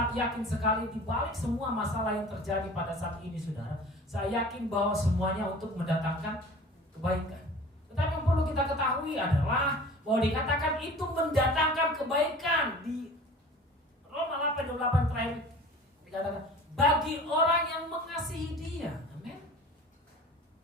yakin sekali di balik semua masalah yang terjadi pada saat ini, saudara, saya yakin bahwa semuanya untuk mendatangkan kebaikan. Tetapi yang perlu kita ketahui adalah bahwa dikatakan itu mendatangkan kebaikan. Di Roma 8:28 terakhir dikatakan bagi orang yang mengasihi Dia. Amin.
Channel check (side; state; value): both; normal; correlation 0.42